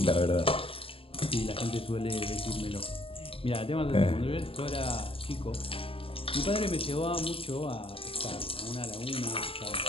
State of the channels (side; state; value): right; late; 0.27 ms